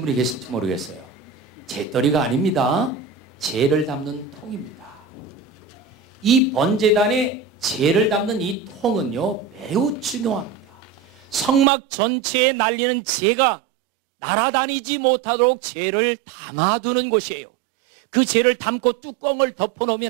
분이 계실지 모르겠어요. 재떨이가 아닙니다. 재를 담는 통입니다. 이 번제단에 재를 담는 이 통은요, 매우 중요합니다. 성막 전체에 날리는 재가 날아다니지 못하도록 재를 담아두는 곳이에요. 그 재를 담고 뚜껑을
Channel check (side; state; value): left; drops out; at 11.7 s